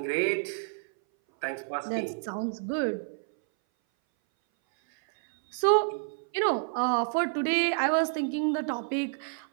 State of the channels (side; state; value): left; silent; 59 dB below the other